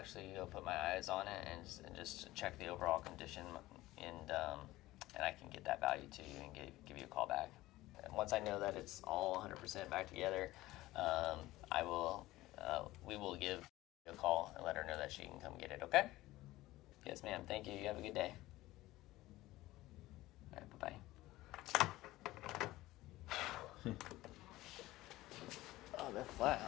go put my eyes on it and just check the overall condition, and I can get that value to you and give you a call back. And once I know that it's all 100% back together, we will give a call and let her know that she can come get it, okay? Yes, ma'am. Thank you. You have a good day. All right, bye-bye. Oh, they're flat,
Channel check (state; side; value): quieter; right; 17.5 dB